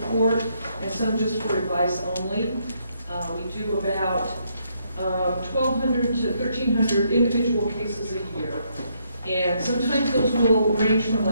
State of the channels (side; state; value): both; inverted; correlation -0.74